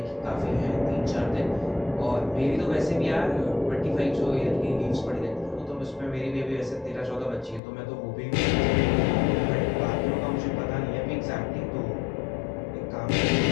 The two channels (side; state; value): right; drops out; at 7.6 s